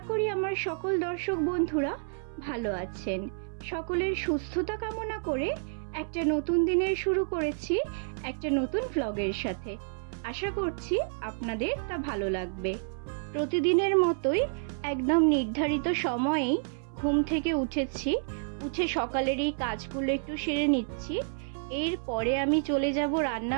করি আমার সকল দর্শক বন্ধুরা ভালো আছেন। সকলের সুস্থতা কামনা করে একটা নতুন দিনের শুরু করেছি একটা নতুন ভ্লগের সাথে। আশা করছি আপনাদের তা ভালো লাগবে। প্রতিদিনের মতোই একদম নির্ধারিত সময়েই ঘুম থেকে উঠে সকালের এই কাজগুলো একটু সেরে নিচ্ছি। এরপরে আমি চলে যাব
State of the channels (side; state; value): left; silent; 58 dB below the other